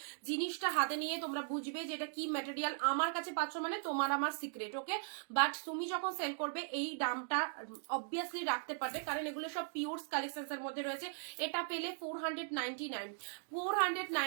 জিনিসটা হাতে নিয়ে তোমরা বুঝবে যে এটা কি ম্যাটেরিয়াল। আমার কাছে পাচ্ছ মানে তোমার আমার সিক্রেট, ওকে, বাট তুমি যখন সেল করবে এই দামটা অবভিয়াসলি রাখতে পারবে, কারণ এগুলো সব পিওর কালেকশনস এর মধ্যে রয়েছে। এটা পেলে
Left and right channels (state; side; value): silent; left; digital silence